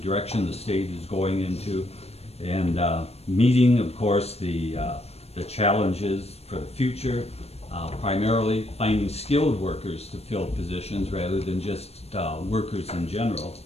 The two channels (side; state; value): right; late; 0.30 ms